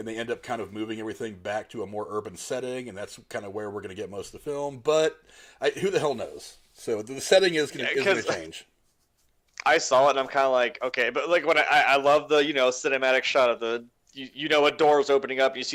they end up kind of moving everything back to a more urban setting, and that's kind of where we're going to get most of the film. But who the hell knows? So the setting is going to change. I saw it, and I'm kind of like, okay, but like when I love the cinematic shot of the a door is opening up, you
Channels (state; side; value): identical; both; correlation 1.00